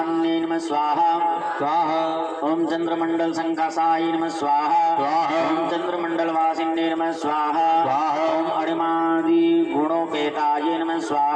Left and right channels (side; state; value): both; identical; correlation 1.00